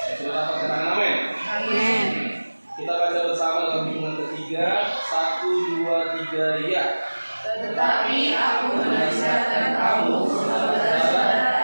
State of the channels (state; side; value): inverted; both; correlation -1.00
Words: Sudah dapat katakan amin. Amin. Kita baca bersama dalam hitungan ketiga. 1, 2, 3, ya. Tetapi aku menasihatkan kamu,